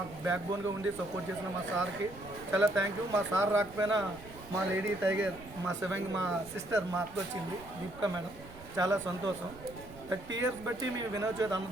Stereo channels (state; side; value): noise; right; rumble, 18 dB below the sound